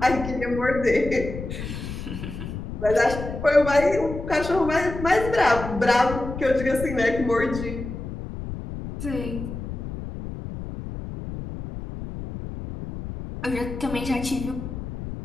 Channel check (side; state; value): left; noise; rumble, 8 dB below the sound